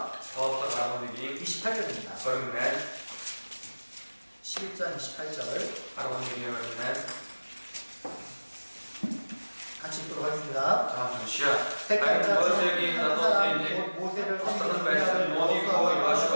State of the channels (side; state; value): both; inverted; correlation -1.00